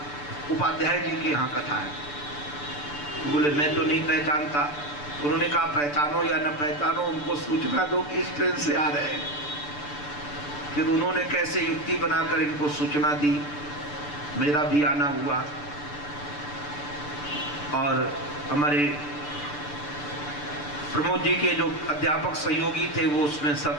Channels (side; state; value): right; late; 6.8 ms